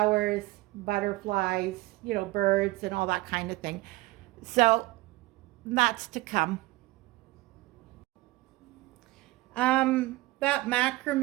butterflies, birds and all that kind of thing. So that's to come. That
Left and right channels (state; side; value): quieter; left; 20.1 dB